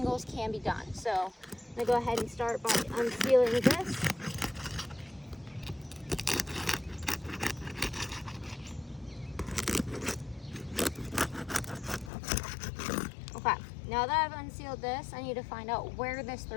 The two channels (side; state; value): right; drops out; at 12.1 s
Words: can be done. So I'm gonna go ahead and start by unsealing this. Okay, now that I've unsealed this, I need to find out where this